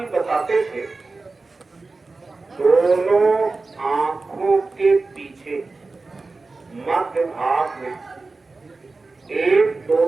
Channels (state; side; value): quieter; left; 3.7 dB